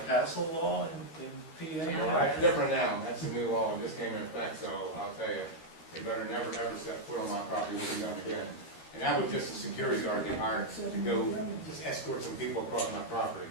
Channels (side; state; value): right; late; 13 ms